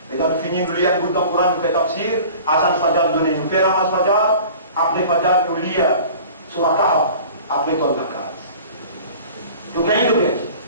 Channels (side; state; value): both; inverted; correlation -0.43